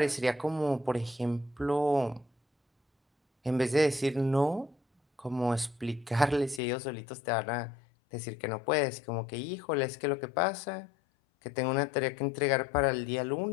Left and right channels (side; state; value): right; drops out; at 6.6 s